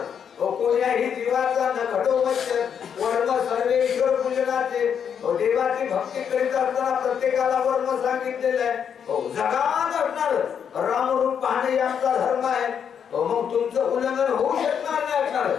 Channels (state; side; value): quieter; right; 7.8 dB